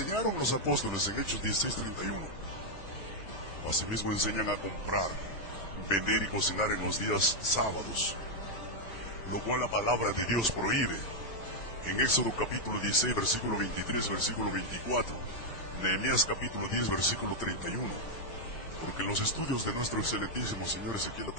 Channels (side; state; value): right; late; 6.2 ms